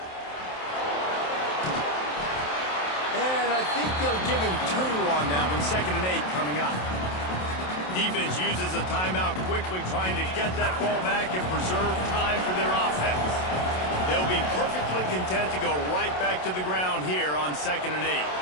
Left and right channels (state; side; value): late; right; 27 ms